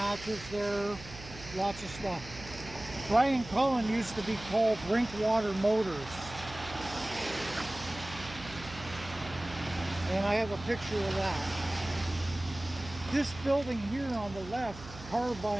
there. Lots of stuff. Brian Cullen used to be called Drinkwater Motors. And I have a picture of that. This building here on the left, car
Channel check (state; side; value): noise; right; hum, 15 dB below the sound